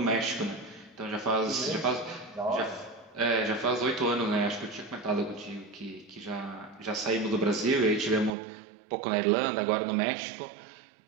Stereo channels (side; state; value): left; drops out; at 8.3 s